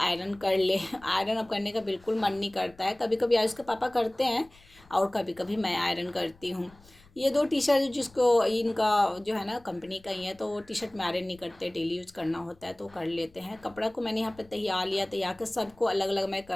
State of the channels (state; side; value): noise; left; rumble, 27 dB below the sound